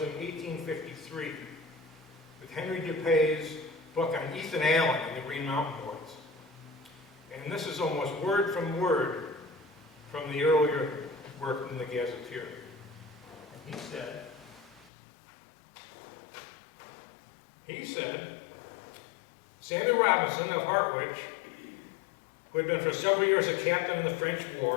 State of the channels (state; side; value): drops out; right; at 14.9 s